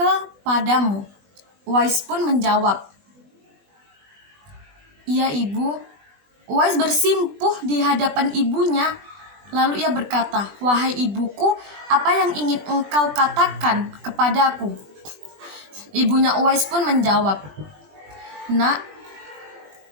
Uwais pun menjawab, "Iya ibu." Uwais bersimpuh di hadapan ibunya. Lalu ia berkata, "Wahai ibuku, apa yang ingin engkau katakan kepadaku?" Ibunya Uwais pun menjawab, "Nak,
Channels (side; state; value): left; late; 20 ms